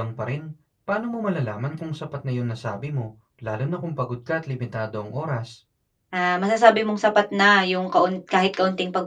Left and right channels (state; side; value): identical; both; correlation 1.00